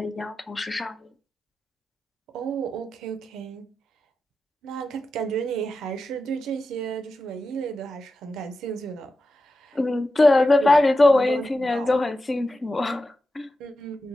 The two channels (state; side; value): normal; both; correlation 0.91